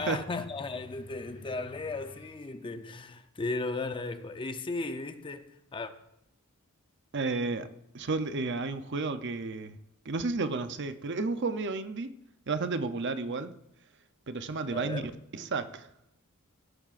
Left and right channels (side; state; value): both; normal; correlation 0.29